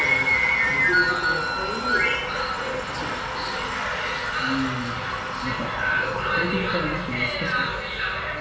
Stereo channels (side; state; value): both; identical; correlation 1.00